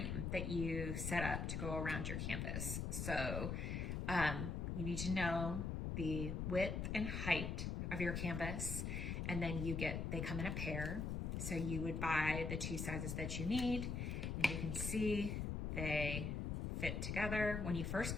that you set up to go around your canvas. So you need to know the width and height of your canvas, and then they come in a pair. So you would buy the two sizes that you need, and you can see they fit together. When you first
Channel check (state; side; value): noise; left; rumble, 1 dB below the sound